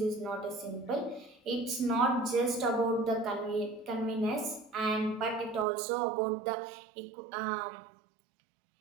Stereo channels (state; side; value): drops out; left; at 5.7 s